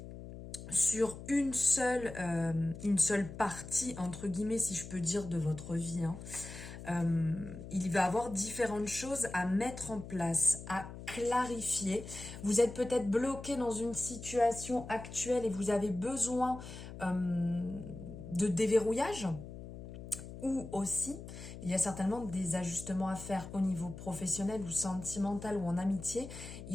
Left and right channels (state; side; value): noise; left; hum, 12 dB below the sound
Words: sur une seule partie, entre guillemets, si je peux dire, de votre vie. Il va y avoir différentes choses à mettre en place, à clarifier. Vous êtes peut-être bloqué dans une situation actuelle et vous avez besoin de déverrouillage. Ou aussi, il y a certainement des ajustements à faire au niveau professionnel ou sentimental ou en amitié.